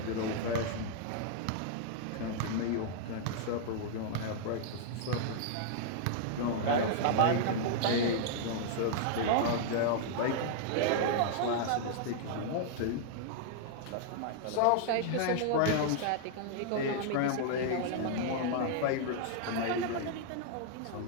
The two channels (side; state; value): both; different; correlation -0.01